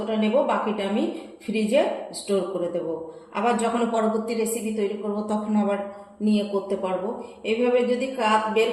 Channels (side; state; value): both; identical; correlation 1.00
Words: নেব, বাকিটা আমি ফ্রিজে স্টোর করে দেব। আবার যখন পরবর্তী রেসিপি তৈরি করব তখন আবার নিয়ে করতে পারবো। এইভাবে যদি কাপ বের